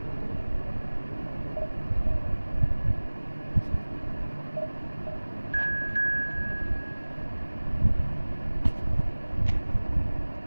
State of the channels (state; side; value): inverted; both; correlation -1.00